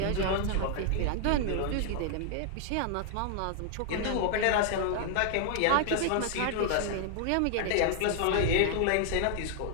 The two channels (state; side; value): different; both; correlation 0.00